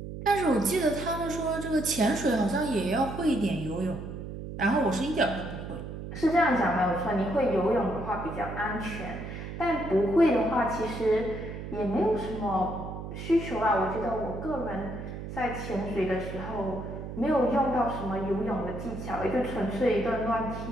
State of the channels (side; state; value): right; noise; hum, 8 dB below the sound